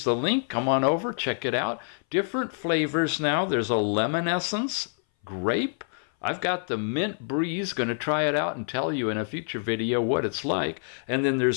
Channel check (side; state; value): right; silent; 59 dB below the other